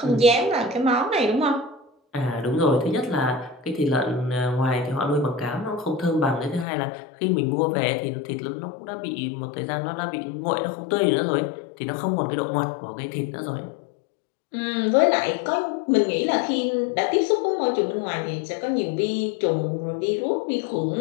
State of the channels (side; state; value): right; drops out; at 6.7 s